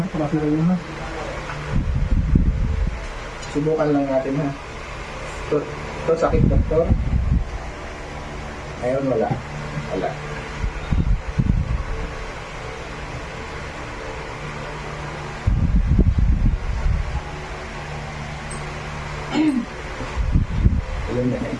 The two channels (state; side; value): identical; both; correlation 1.00